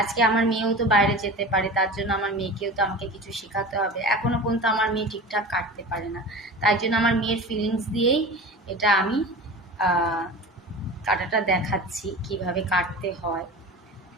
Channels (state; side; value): normal; both; correlation 0.33